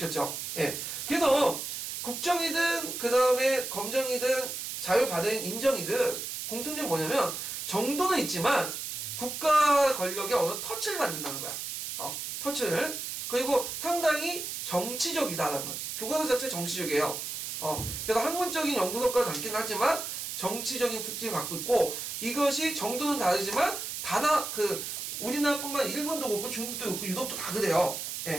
예. 그래서 국정이든 그 다음에 검정이든 자율 발행 인정이든 공통점이 뭐냐면 정도는 있지만 국가 권력에 어느 터치를 받는다는 거야. 터치를. 그리고 상당히 정치적이다라는 거야. 교과서 자체 정치적이에요. 그래서 학문적인 연구 성과를 담긴 하지만 정치적인 특징을 갖고 있고, 이것이 정도는 다르지만 우리나라뿐만 아니라 일본도 그렇고 중국도 그렇고 유럽도 다 그래요.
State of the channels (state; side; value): noise; right; hiss, 5 dB below the sound